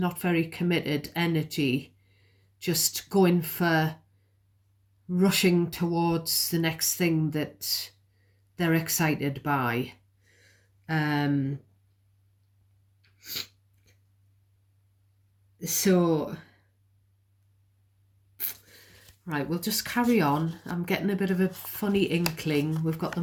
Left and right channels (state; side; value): identical; both; correlation 1.00